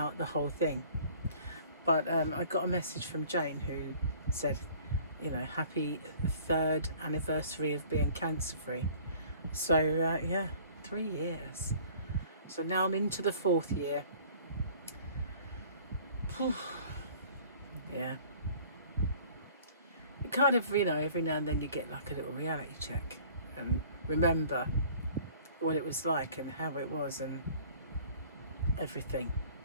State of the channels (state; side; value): inverted; both; correlation -0.51